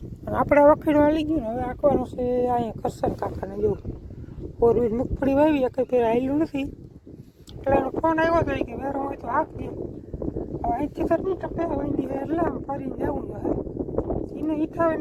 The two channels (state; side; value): identical; both; correlation 1.00